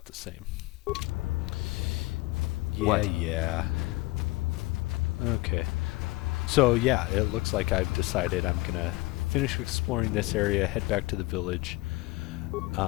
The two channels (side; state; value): right; quieter; 21.6 dB